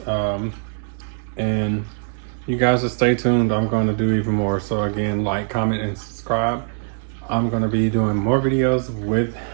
And you guys just stay tuned. I'm going to do even more. So again, like, comment, and subscribe. I'm going to be doing more videos with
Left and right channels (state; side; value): silent; left; 65 dB below the other